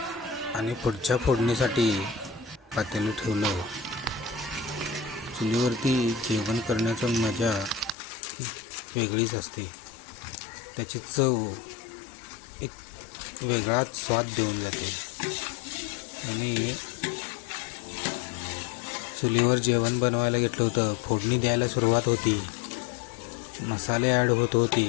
आणि पुढच्या फोडणीसाठी पातेलं ठेवलं. चुलीवरती जेवण करण्याचं मजा वेगळीच असते. त्याची चव एक वेगळाच स्वाद देऊन जाते. आणि चुलीवर जेवण बनवायला घेतलं होतं. फोडणी द्यायला सुरुवात होती. मसाले ॲड होत होते.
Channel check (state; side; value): drops out; right; at 8.0 s